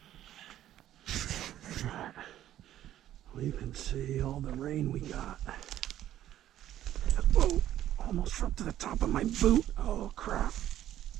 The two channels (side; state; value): left; quieter; 12.4 dB